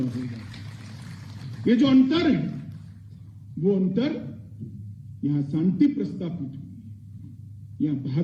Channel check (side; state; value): both; identical; correlation 1.00